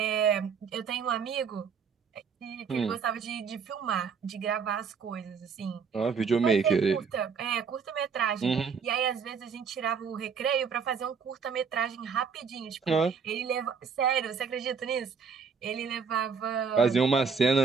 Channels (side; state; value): left; quieter; 5.9 dB